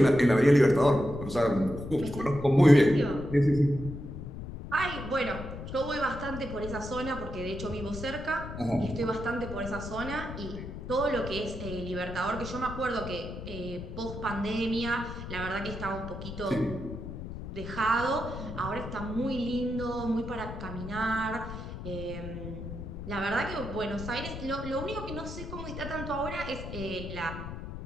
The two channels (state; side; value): noise; left; rumble, 9 dB below the sound